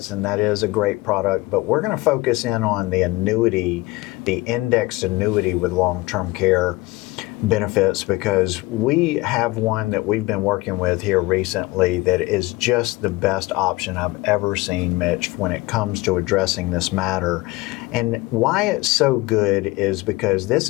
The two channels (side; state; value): right; quieter; 21.0 dB